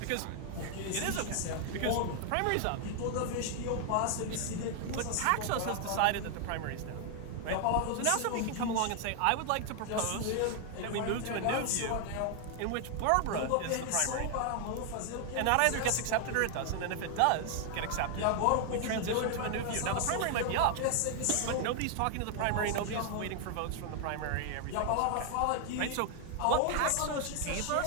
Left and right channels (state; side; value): different; both; correlation 0.00